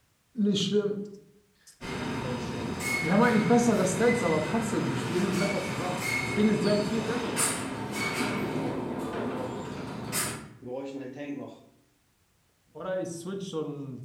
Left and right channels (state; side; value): identical; both; correlation 1.00